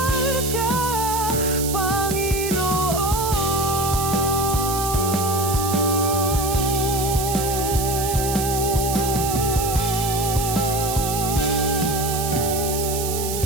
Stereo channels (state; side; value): noise; right; hiss, 5 dB below the sound